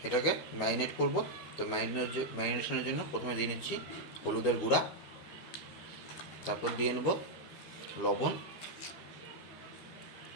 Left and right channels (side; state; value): right; late; 13 ms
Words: এটাকে ম্যারিনেট করব। তো ম্যারিনেশনের জন্য প্রথমে দিয়ে নিচ্ছি হলুদের গুঁড়া, তারপর দিয়ে নেব লবণ,